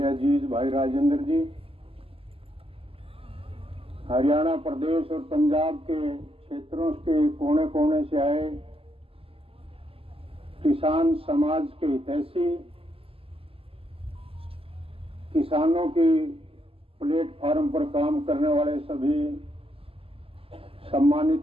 अजीज भाई राजेंद्र जी, हरियाणा प्रदेश और पंजाब के क्षेत्रों के कोने कोने से आए किसान समाज के हितैषी, किसानों की प्लेटफॉर्म पर काम करने वाले सभी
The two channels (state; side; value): late; left; 0.27 ms